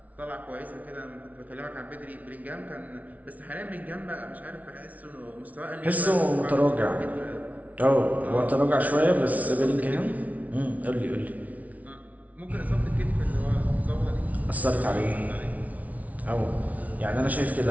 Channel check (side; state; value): left; late; 0.071 ms